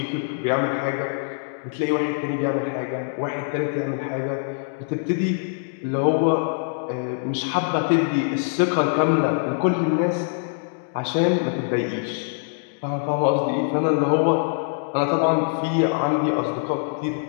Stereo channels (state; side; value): silent; right; digital silence